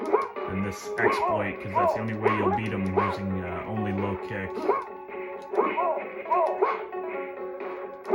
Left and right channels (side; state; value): both; identical; correlation 1.00